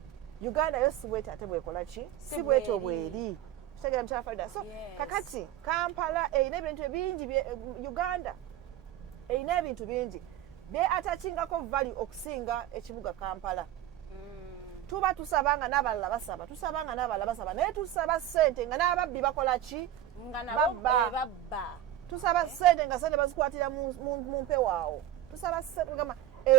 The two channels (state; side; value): quieter; left; 11.9 dB